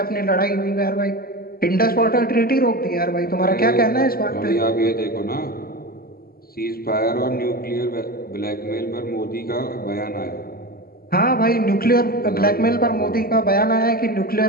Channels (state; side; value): late; right; 0.43 ms